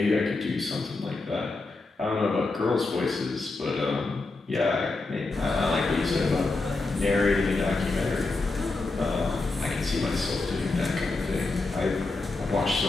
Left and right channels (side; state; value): right; quieter; 3.5 dB